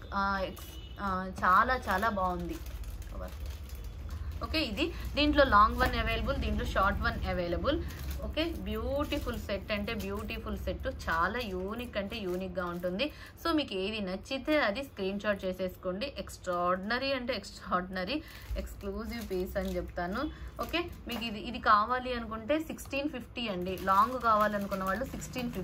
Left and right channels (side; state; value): both; identical; correlation 1.00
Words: చాలా బాగుంది. ఓకే, దీంట్లో లాంగ్ వన్ అవైలబుల్, దీంట్లో short one available. Okay, beautiful set అంటే బ్యూటిఫుల్ సెట్, చాలా యూనిక్ గా ఉంటుంది. సో మీకు ఏది నచ్చితే అది స్క్రీన్ షాట్ చేసేసుకోండి. ఎక్స్ట్రాడినరీ ఎక్స్క్లూజివ్ పీస్ అని చెప్తాను. ఓకే, మీకు ఇది కావాలి అనుకుంటే 1650 అండి. లాంగ్ కావాలనుకున్న వాళ్ళు